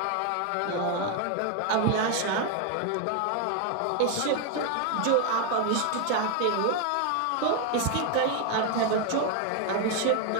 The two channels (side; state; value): both; different; correlation 0.01